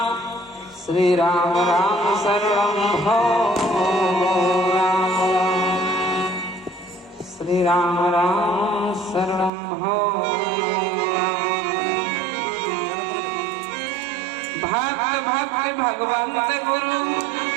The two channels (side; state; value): left; drops out; at 9.5 s